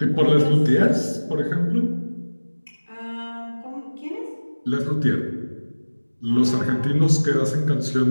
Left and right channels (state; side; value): inverted; both; correlation -1.00